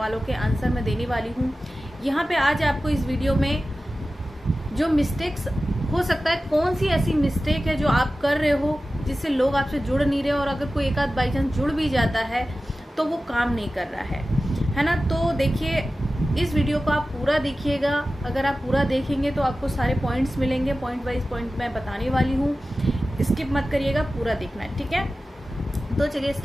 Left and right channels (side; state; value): both; normal; correlation 0.95